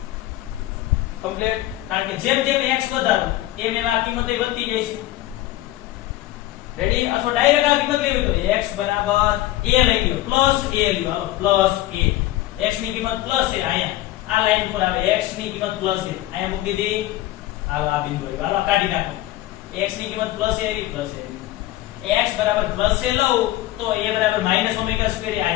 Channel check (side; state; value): right; quieter; 15.9 dB